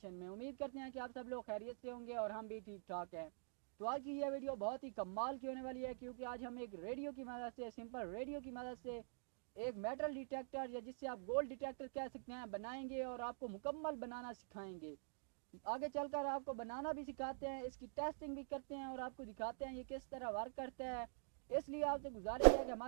में। उम्मीद करते हैं कि आप सब लोग खैरियत से होंगे और हम भी ठीक ठाक हैं। तो आज की यह वीडियो बहुत ही कमाल की होने वाली है, क्योंकि आज हम एक रेडियो की मदद से, सिंपल रेडियो की मदद से एक मेटल डिटेक्टर या जिससे आप गोल्ड डिटेक्टर कह सकते हैं बनाएंगे और आपको मुकम्मल बनाना सिखाएंगे। आगे चलकर आपको बनाना भी सिखाते हैं, इसकी टेस्टिंग भी करते हैं और आपको दिखाते हैं ये किस तरह वर्क करता है। इसलिए आपसे गुजारिश है कि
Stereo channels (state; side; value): silent; left; digital silence